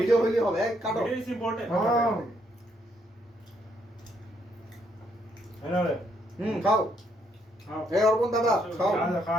হইলে হবে কাটো ভিডিও ইজ ইম্পর্টেন্ট হ্যাঁ এনারে খাও খাও এই অর্পণ দাদা খাও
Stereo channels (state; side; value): normal; both; correlation 0.73